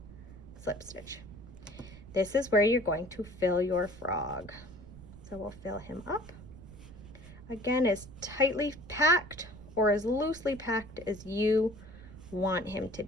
slip stitch. This is where you're going to fill your frog. So we'll fill him up. Again, as tightly packed or as loosely packed as you want him to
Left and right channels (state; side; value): noise; right; rumble, 17 dB below the sound